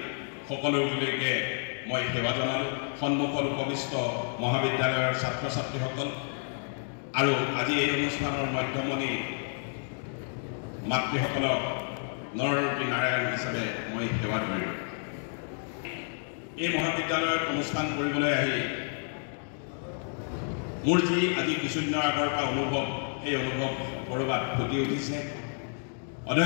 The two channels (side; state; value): right; silent; 58 dB below the other